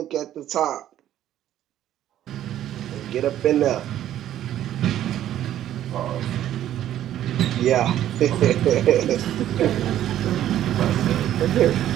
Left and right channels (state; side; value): quieter; left; 11.9 dB